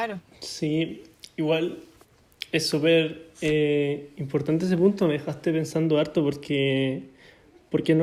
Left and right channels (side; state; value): both; identical; correlation 1.00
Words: Sí, igual es súper importante ese punto, me dejaste pensando harto porque